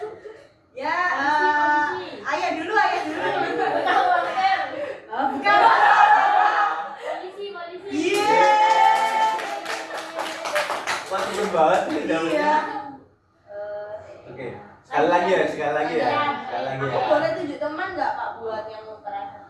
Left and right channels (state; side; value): identical; both; correlation 1.00